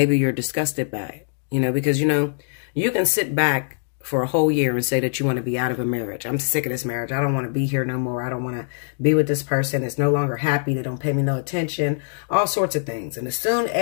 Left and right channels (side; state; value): right; silent; digital silence